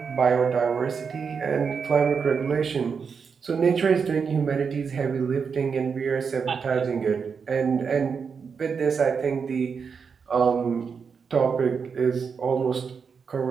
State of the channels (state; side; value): quieter; left; 5.9 dB